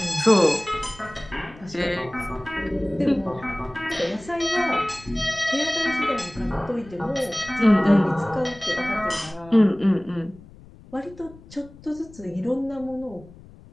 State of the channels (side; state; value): left; noise; rumble, 21 dB below the sound